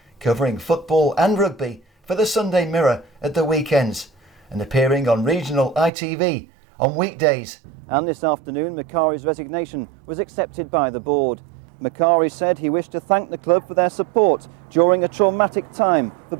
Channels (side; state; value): left; drops out; at 5.9 s